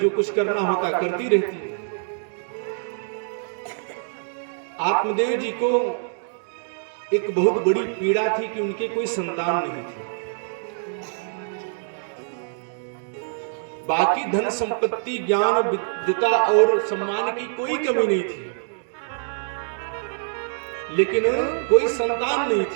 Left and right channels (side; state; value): left; silent; digital silence